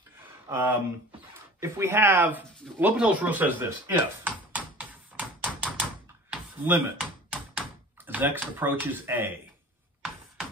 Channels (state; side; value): normal; both; correlation 0.42